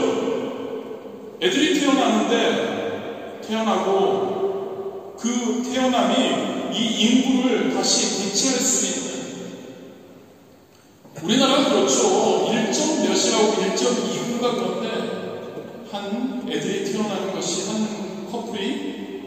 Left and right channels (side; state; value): both; identical; correlation 1.00